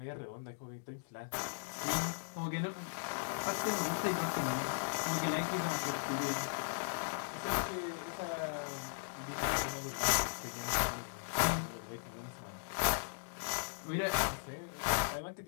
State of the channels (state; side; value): silent; right; digital silence